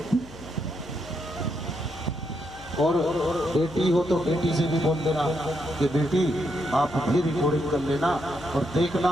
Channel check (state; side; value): noise; left; hum, 18 dB below the sound